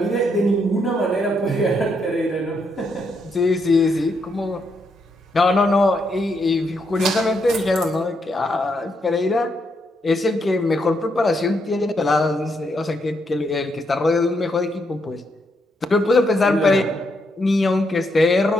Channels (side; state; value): both; normal; correlation 0.78